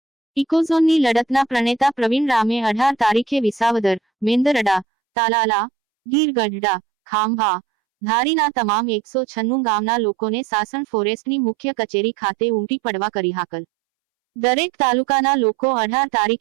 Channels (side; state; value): left; drops out; at 4.9 s